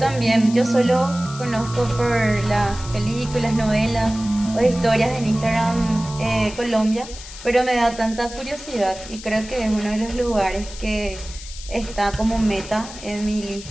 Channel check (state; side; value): noise; left; hiss, 14 dB below the sound